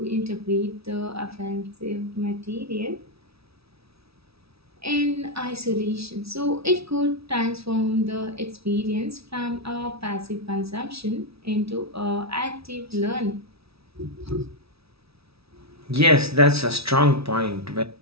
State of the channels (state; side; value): late; left; 0.77 ms